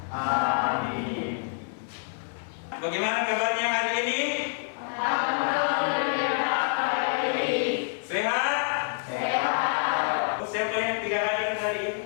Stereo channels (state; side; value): silent; right; 60 dB below the other